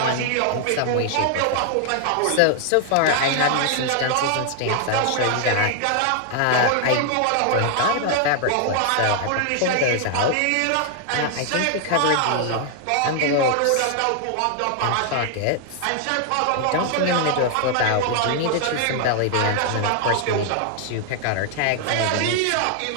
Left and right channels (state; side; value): different; both; correlation 0.00